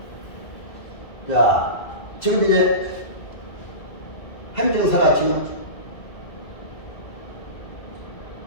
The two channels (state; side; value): late; right; 2.0 ms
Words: 자, 지금 이제 행정사가 지금